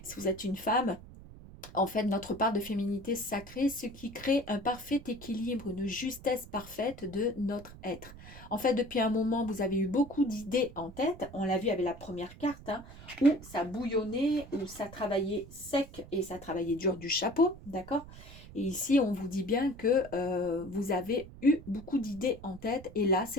Si vous êtes une femme, en fait, notre part de féminité sacrée, ce qui crée un parfait équilibre, une justesse parfaite de notre être. En fait, depuis un moment, vous avez eu beaucoup d'idées en tête. On l'a vu avec la première carte, hein, où ça bouillonnait, où ça travaillait sec et ça travaillait dur du chapeau, d'accord? Et ici, on vous dit bien que vous avez eu beaucoup d'idées en tête. Et là,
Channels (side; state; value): right; noise; rumble, 17 dB below the sound